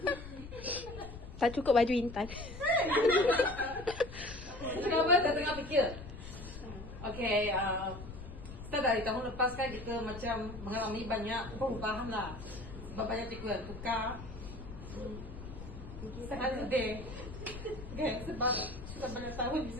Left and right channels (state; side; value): noise; left; rumble, 12 dB below the sound